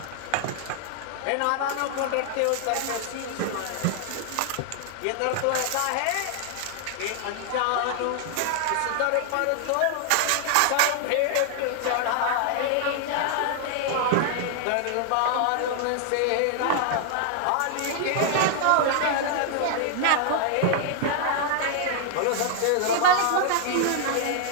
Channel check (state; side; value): different; both; correlation 0.00